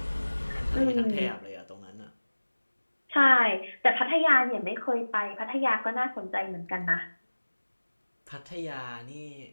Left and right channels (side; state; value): both; inverted; correlation -1.00